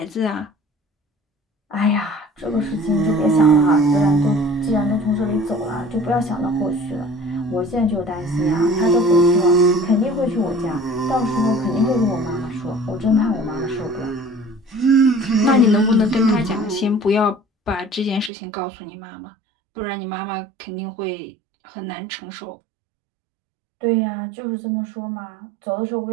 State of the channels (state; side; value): drops out; left; at 18.3 s